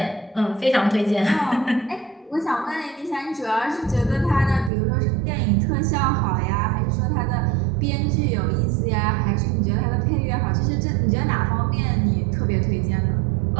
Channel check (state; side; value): drops out; left; at 4.7 s